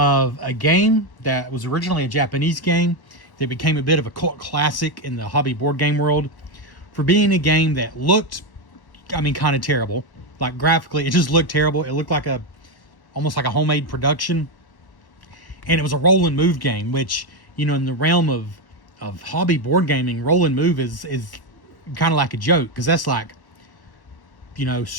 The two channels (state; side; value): late; right; 1.1 ms